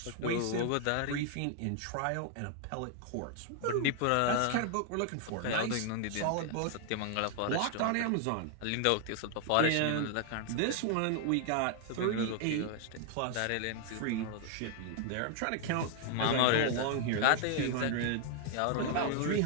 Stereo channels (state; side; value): different; both; correlation 0.00